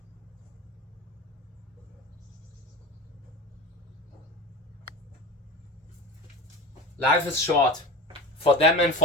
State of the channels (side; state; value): both; normal; correlation 0.31